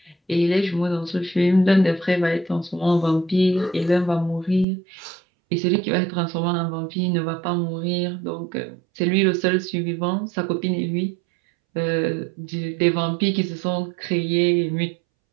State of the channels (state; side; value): drops out; left; at 4.7 s